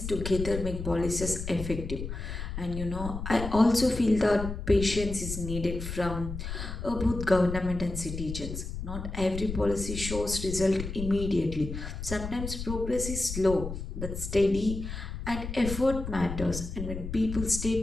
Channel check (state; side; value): noise; left; rumble, 7 dB below the sound